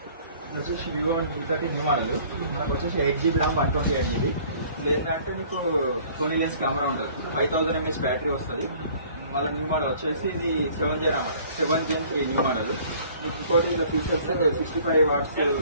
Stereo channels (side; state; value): both; inverted; correlation -0.53